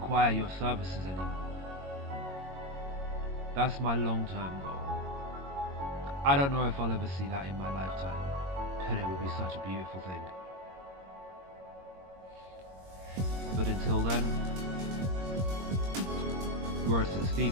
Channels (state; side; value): late; left; 22 ms